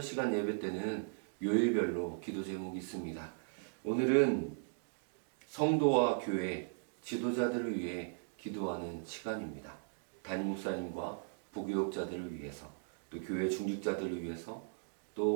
시간 예배 때는 요일별로 기도 제목이 있습니다. 오늘은 성도와 교회 지도자들을 위해 기도하는 시간입니다. 담임 목사님과 부교육자들을 위해서, 또 교회 중직자들을 위해서,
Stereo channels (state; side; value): silent; left; digital silence